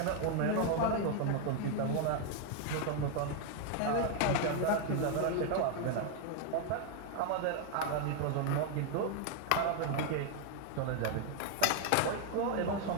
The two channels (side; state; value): both; different; correlation 0.00